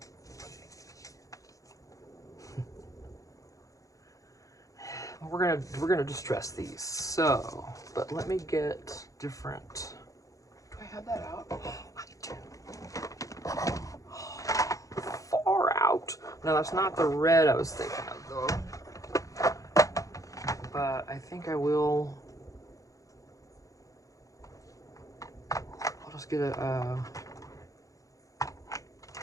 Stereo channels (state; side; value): late; right; 0.16 ms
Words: We're gonna distress these. So, but let me get different. Do I have that out? Oh, I do. Far out. No, that's not the red I was thinking of though. But I think I will. I'll just get a.